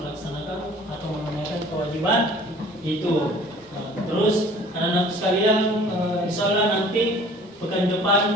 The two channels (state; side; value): normal; both; correlation 0.50